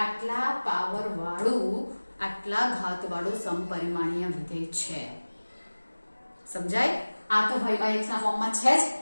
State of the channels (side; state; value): both; inverted; correlation -1.00